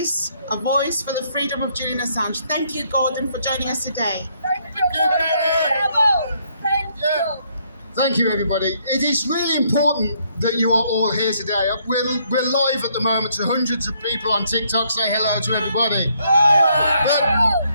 a voice for the freedom of Julian Assange. Thank you, Gordon, for joining us today. Thank you. Thank you, everybody. It is really important that you are all here today. We're live at the moment, and hundreds of people on TikTok. Say hello to everybody.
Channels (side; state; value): both; inverted; correlation -0.70